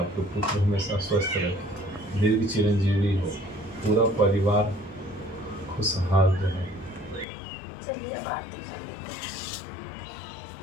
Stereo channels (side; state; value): right; drops out; at 7.2 s